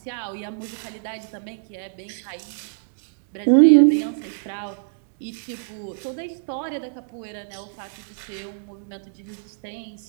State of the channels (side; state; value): left; silent; digital silence